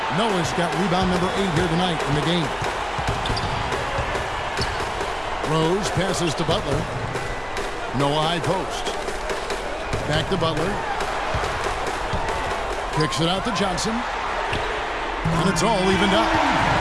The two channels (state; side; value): identical; both; correlation 1.00